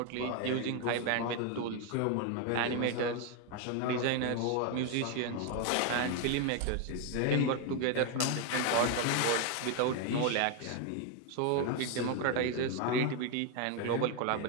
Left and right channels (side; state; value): both; different; correlation 0.01